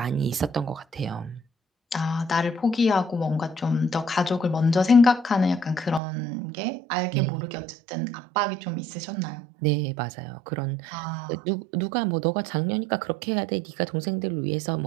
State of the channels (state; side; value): drops out; left; at 6.0 s